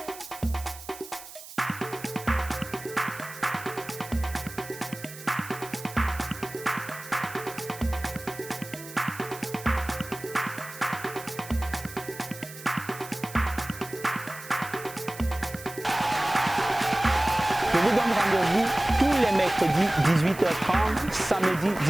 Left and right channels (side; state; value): right; noise; hiss, 15 dB below the sound